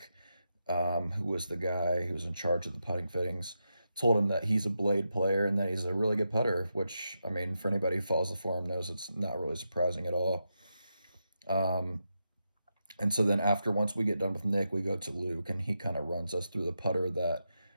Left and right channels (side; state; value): both; inverted; correlation -0.86